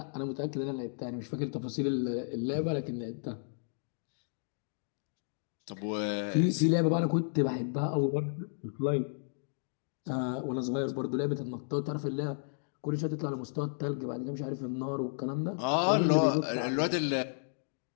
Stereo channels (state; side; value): silent; right; digital silence